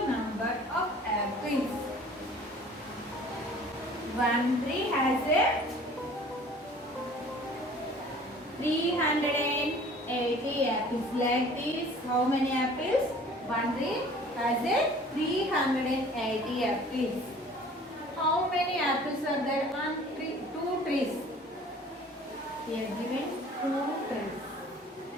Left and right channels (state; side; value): normal; both; correlation 0.49